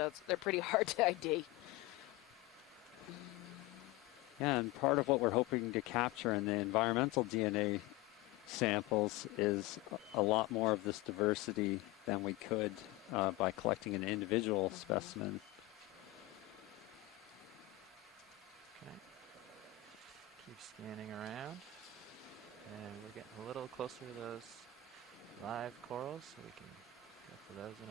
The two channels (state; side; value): quieter; right; 14.1 dB